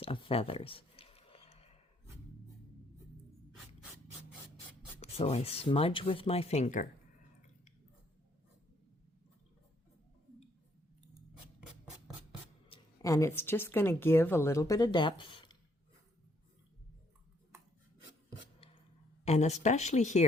of feathers. So I smudge with my finger. And it's just going to give a little bit of depth. And especially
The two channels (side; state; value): both; normal; correlation 0.68